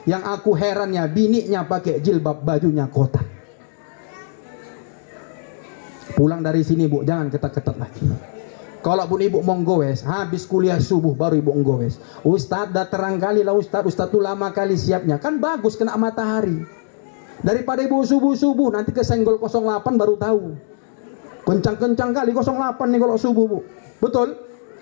Yang aku herannya, bininya pakai jilbab, bajunya kotak. Pulang dari sini, Bu, jangan ketat-ketat lagi. Kalau pun ibu mau goes, habis kuliah subuh baru ibu goes. Ustadz dah terang kali lah Ustadz tuh lama kali siapnya. Kan bagus kena matahari. Daripada ibu subuh-subuh nanti kesenggol 08 baru tahu. Kencang-kencang kali 08 nih kalau subuh, Bu. Betul?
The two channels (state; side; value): silent; right; digital silence